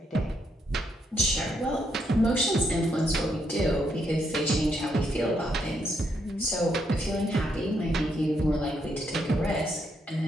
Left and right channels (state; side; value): normal; both; correlation 0.76